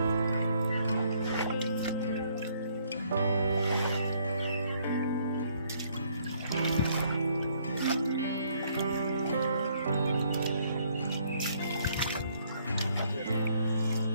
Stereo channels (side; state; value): both; inverted; correlation -0.67